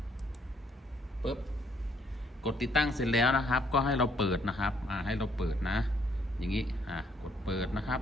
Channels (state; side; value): normal; both; correlation 0.67